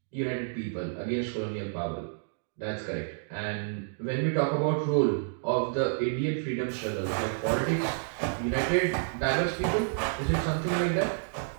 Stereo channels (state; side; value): silent; left; digital silence